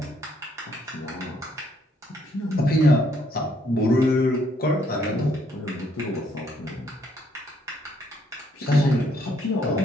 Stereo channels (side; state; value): both; normal; correlation 0.69